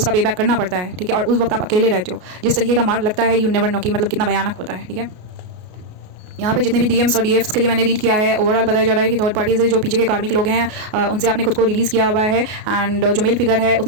पे बैक करना पड़ता है, ठीक है। और उस वक्त आप अकेले रहते हो, जिस तरीके का मार्क लगता है यू नेवर नो कि मतलब कितना भयानक होता है, ठीक है। यहाँ पे जितने भी डीएम्स और डीएफ्स के लिए मैंने रीड किया है, ओवरऑल बताया जा रहा है कि थर्ड पार्टीज जो पीछे के कार्मिक लोग हैं उनसे आपने खुद को रिलीज़ किया हुआ है, एंड जो मेल फिगर है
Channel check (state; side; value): late; left; 33 ms